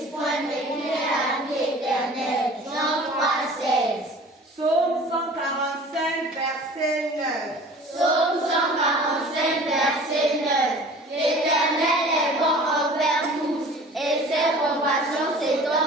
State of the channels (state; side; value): normal; both; correlation 0.44